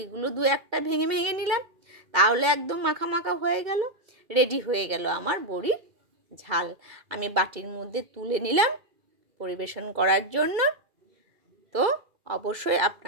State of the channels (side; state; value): left; late; 2.3 ms